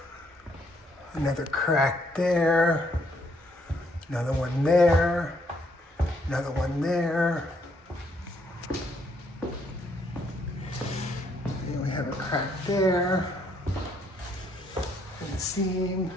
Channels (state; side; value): normal; both; correlation 0.70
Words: Another crack there. Another one there. Another one there. And we have a crack there. In the seam.